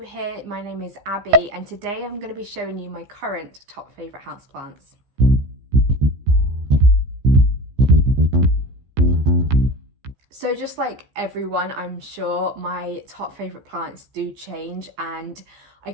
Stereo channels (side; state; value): left; late; 15 ms